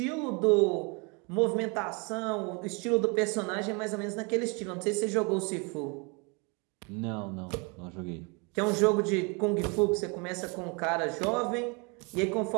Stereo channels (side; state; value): left; quieter; 31.5 dB